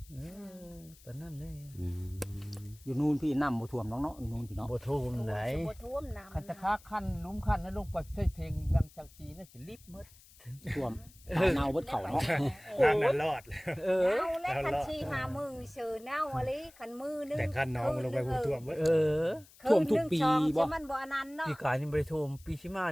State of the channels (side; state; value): left; noise; hiss, 24 dB below the sound